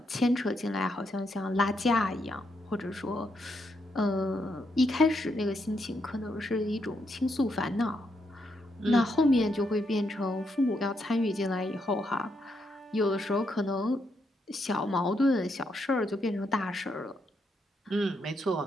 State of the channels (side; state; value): both; normal; correlation 0.79